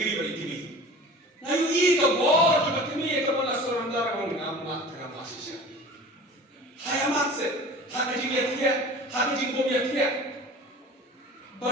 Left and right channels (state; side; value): normal; both; correlation 0.41